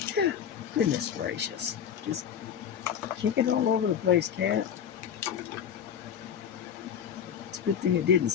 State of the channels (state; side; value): quieter; right; 8.4 dB